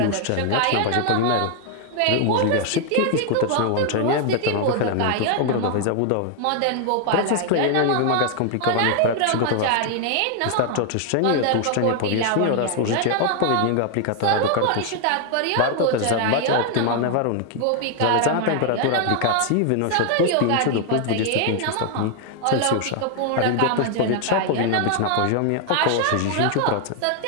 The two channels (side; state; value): both; different; correlation 0.00